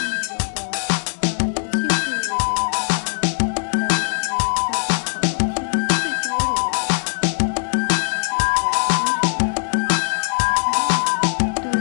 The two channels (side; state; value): right; silent; 65 dB below the other